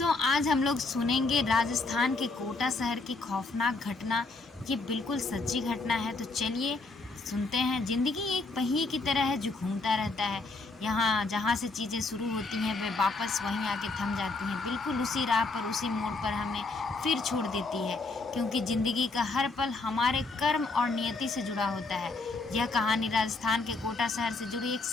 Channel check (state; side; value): quieter; right; 3.6 dB